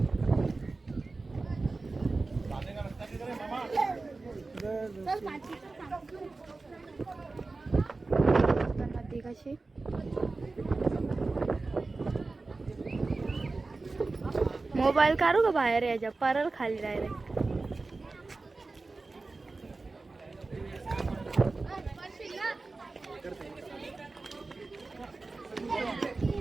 नदी कशी मोबाईल काढू का बाहेर? याच्या परल खाली डायरेक्ट.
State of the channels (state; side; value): quieter; left; 3.6 dB